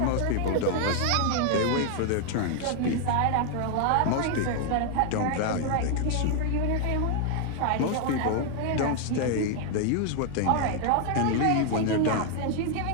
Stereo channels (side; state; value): both; different; correlation 0.00